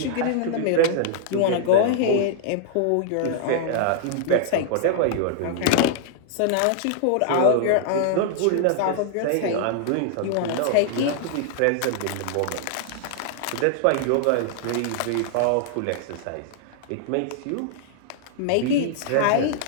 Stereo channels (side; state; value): both; different; correlation -0.01